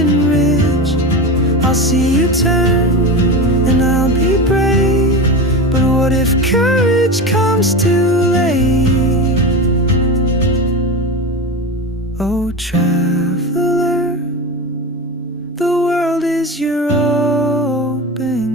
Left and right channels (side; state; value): both; normal; correlation 0.24